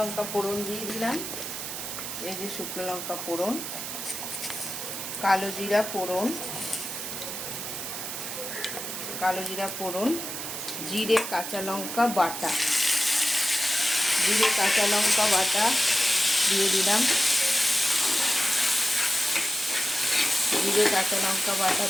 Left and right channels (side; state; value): right; noise; hiss, 6 dB below the sound